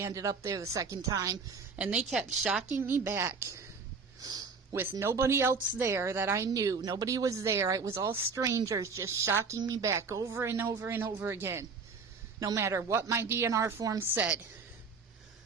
up there the second time. And they kept shocking me back with nobody else there that I knew. Nobody was there. It was all strangers just shocking me back over and over and over again, no matter what my DNR form said.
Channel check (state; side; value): quieter; left; 4.9 dB